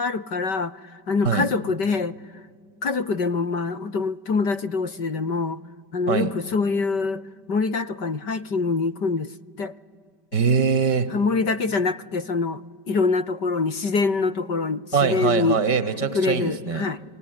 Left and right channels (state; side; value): late; right; 5.2 ms